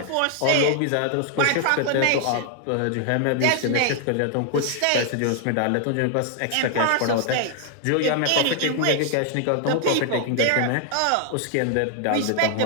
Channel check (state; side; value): different; both; correlation 0.00